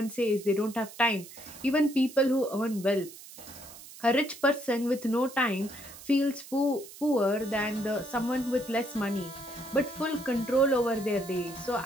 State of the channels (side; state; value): right; noise; hiss, 17 dB below the sound